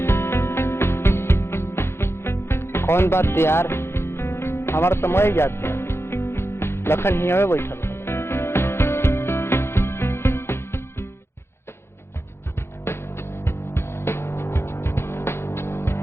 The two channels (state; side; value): late; right; 0.12 ms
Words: कौन बात यार, हमारा समय याद था, लखन ही हमें बैठल।